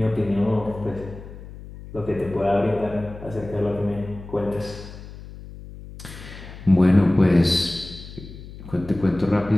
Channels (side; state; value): left; noise; hum, 15 dB below the sound